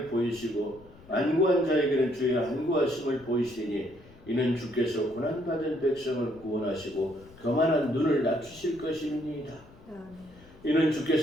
보이시고 안구한 자에게는 주의 안구하심을 보이시니 이는 주께서 고난받은 백성을 구원하시고 교만한 눈을 낮추실 것입니다. 이는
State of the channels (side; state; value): left; noise; rumble, 24 dB below the sound